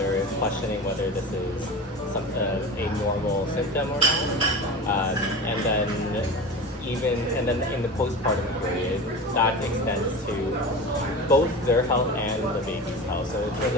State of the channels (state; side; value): normal; both; correlation 0.30